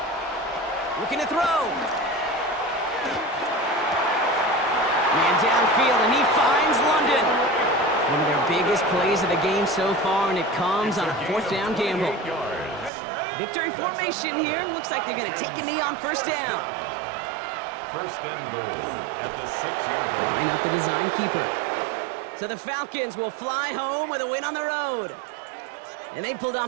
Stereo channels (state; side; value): drops out; left; at 12.9 s